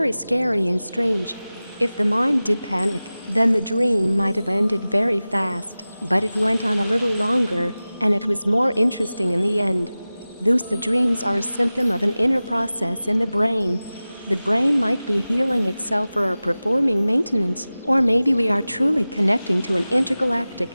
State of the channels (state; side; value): inverted; both; correlation -0.97